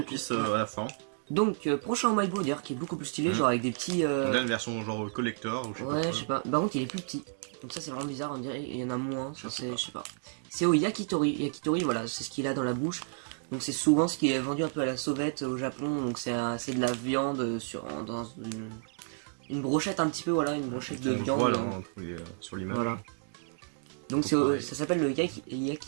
à la fin. Donc, prochain Umaibo d'ailleurs, qui est beaucoup plus stylé, genre avec des petits. On a une version genre collector ou je sais pas. Ouais, je sais pas. Par contre, il est plus petit. Donc ça c'est vraiment bizarre, on dirait il y en a moins, je sais pas. C'est au yakitori. Yakitori, voilà, c'est ce qu'il a dans la bouche. Donc c'est souvent ce qui est vendu un peu à la sauvette au Japon. Donc c'est de la viande dans une brochette un petit peu, voilà, une brochette de viande. Voilà, sur l'image. Voilà. Donc ça s'appelle le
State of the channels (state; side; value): silent; left; digital silence